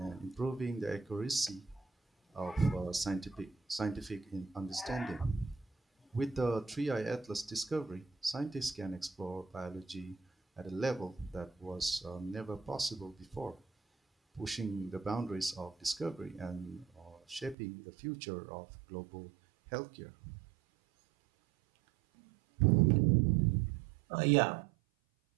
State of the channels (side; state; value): left; drops out; at 17.6 s